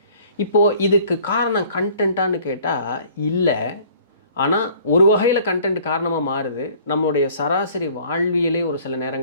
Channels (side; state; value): both; inverted; correlation -0.53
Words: இப்போது இதுக்கு காரணம் கண்டென்ட்டான்னு கேட்டால் இல்லை. ஆனால் ஒரு வகையில் கண்டென்ட் காரணமாக மாறுது. நம்மளுடைய சராசரி வாழ்வியலே ஒரு சில